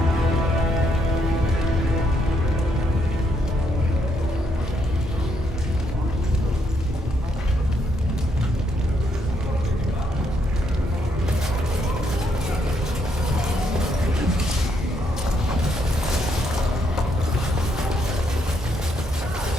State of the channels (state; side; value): normal; both; correlation 0.74